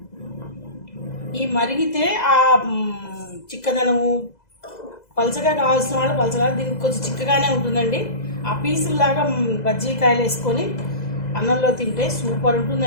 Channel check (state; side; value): late; right; 2.0 ms